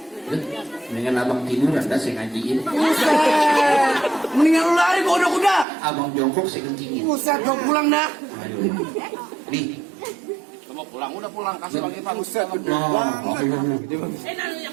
Mendingan abang tiduran dah saya ngajiin. Buset. Mendingan lu lari ke kuda-kuda. Abang jongkok saya kencingin. Buset, gue pulang dah. Ayo. Nih. Lu mau pulang, udah pulang. Kasih lagi, Bang. Buset, gede Oh, banget. oh.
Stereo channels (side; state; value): left; drops out; at 5.7 s